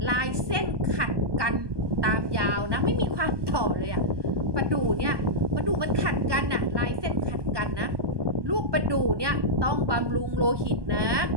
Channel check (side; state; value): left; late; 1.2 ms